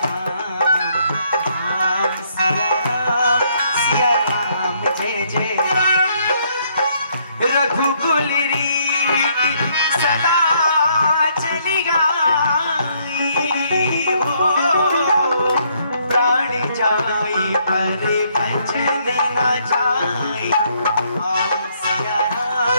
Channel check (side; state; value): both; inverted; correlation -0.69